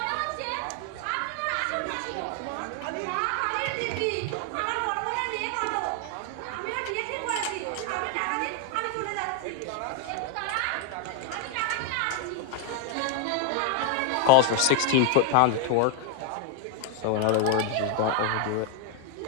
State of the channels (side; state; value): both; different; correlation 0.00